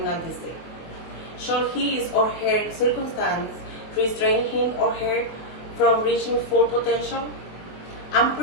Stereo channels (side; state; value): right; late; 23 ms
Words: disease. Should his or her circumstance restrain him or her from reaching full potential? I'm